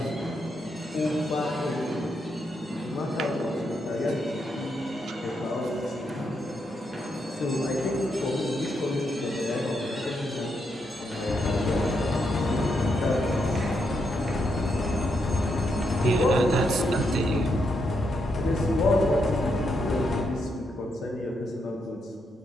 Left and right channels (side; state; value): both; normal; correlation 0.80